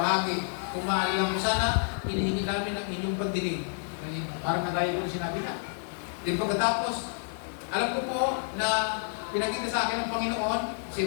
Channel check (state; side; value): silent; right; digital silence